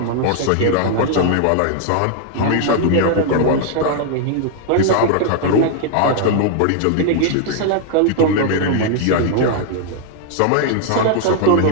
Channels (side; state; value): both; different; correlation 0.00